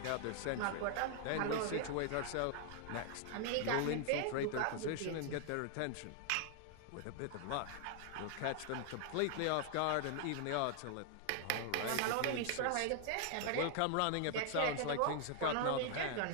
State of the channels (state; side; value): different; both; correlation 0.00